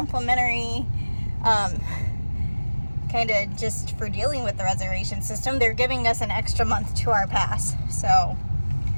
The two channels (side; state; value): both; inverted; correlation -1.00